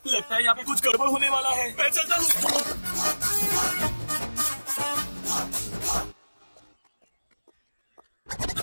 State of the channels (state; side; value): inverted; both; correlation -1.00